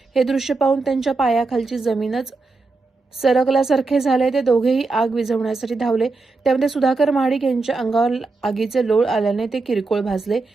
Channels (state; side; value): quieter; left; 3.7 dB